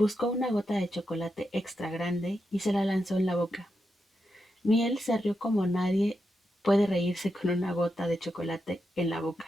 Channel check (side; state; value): both; normal; correlation 0.86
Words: una gota de chocolate extra grande y se la lanzó en la boca. Miel se rió como nadie puede reírse con una gota de chocolate en la